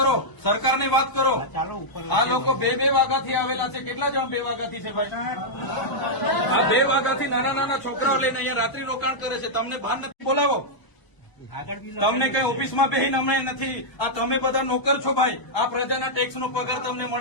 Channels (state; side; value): late; right; 1.0 ms